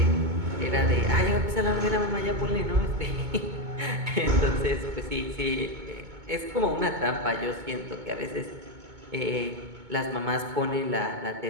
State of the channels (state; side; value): late; left; 2.2 ms